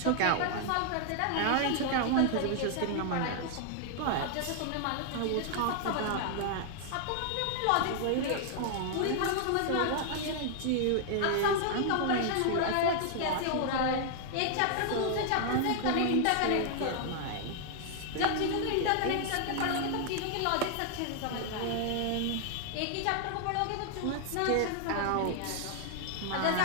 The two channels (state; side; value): different; both; correlation 0.00